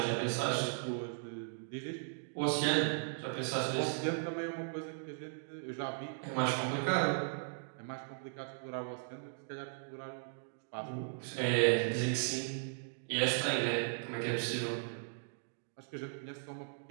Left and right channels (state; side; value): silent; left; digital silence